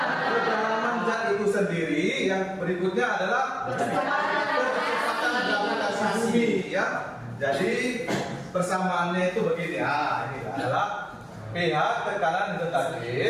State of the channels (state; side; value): identical; both; correlation 1.00